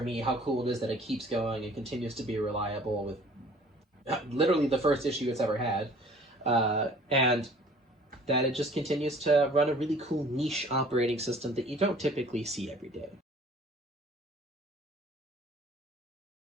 me, how cool it is that it keeps going and continues to be reliable with literally the first issue it's ever had, and that it just continues to run a really cool niche operating system that you don't typically see every day.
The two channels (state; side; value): normal; both; correlation 0.51